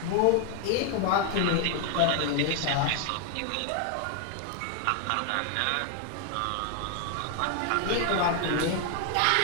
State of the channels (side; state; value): both; different; correlation 0.00